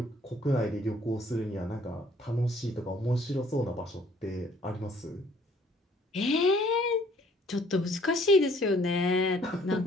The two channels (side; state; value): both; normal; correlation 0.60